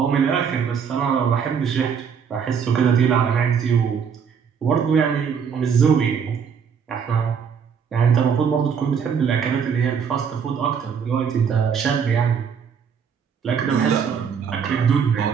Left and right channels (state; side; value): quieter; left; 6.9 dB